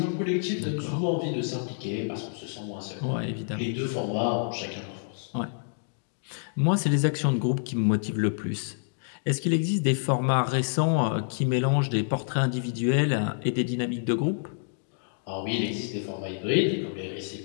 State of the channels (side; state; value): right; silent; digital silence